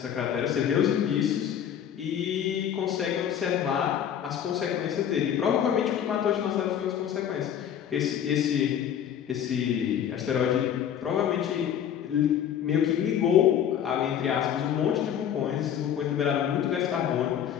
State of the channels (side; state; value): right; quieter; 9.4 dB